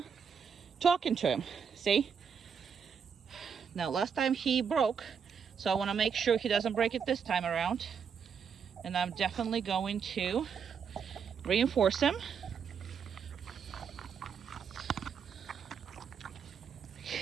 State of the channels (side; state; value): left; quieter; 6.8 dB